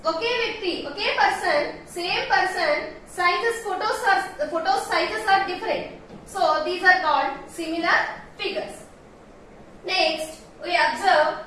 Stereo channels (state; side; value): identical; both; correlation 1.00